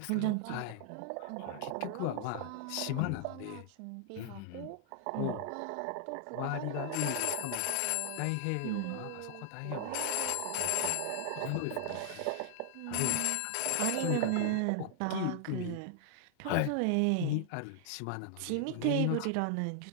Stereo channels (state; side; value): different; both; correlation 0.00